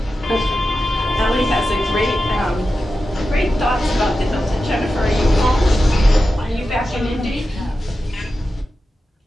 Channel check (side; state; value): both; normal; correlation 0.92